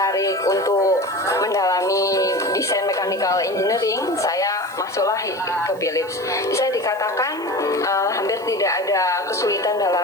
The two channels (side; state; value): right; noise; hiss, 26 dB below the sound